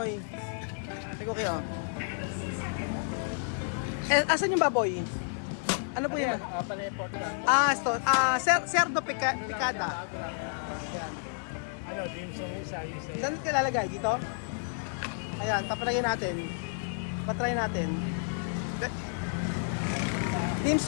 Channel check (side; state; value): right; silent; 57 dB below the other